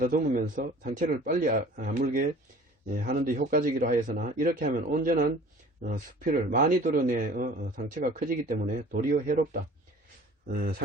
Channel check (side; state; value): both; normal; correlation 0.47